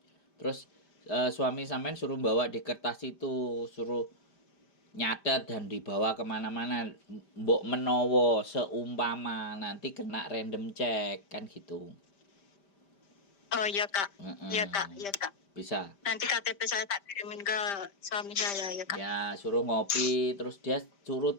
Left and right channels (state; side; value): late; right; 5.1 ms